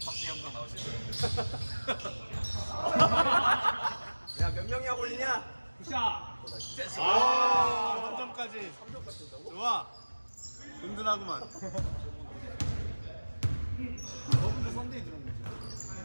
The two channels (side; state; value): both; inverted; correlation -1.00